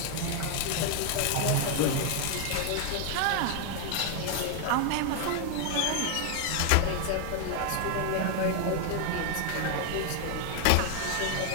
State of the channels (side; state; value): both; different; correlation 0.00